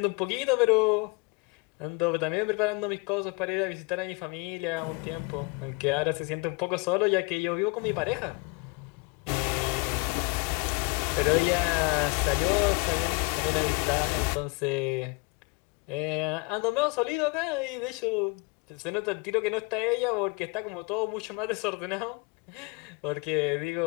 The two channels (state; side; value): quieter; right; 29.4 dB